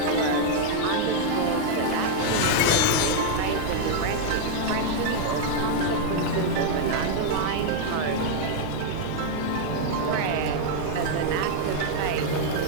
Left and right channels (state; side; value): different; both; correlation -0.01